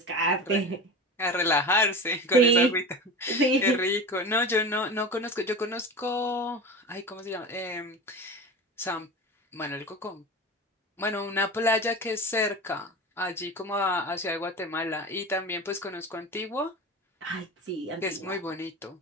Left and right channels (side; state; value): both; normal; correlation 0.30